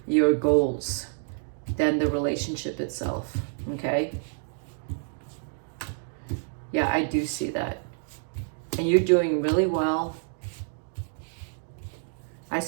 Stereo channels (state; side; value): silent; left; 58 dB below the other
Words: your goals than the relationship itself. Okay? Yeah, I do see that. And you're doing really well. I